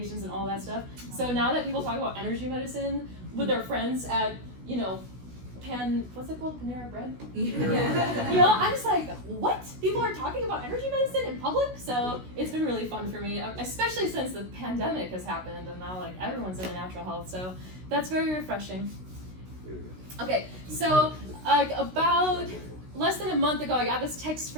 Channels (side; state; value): left; late; 16 ms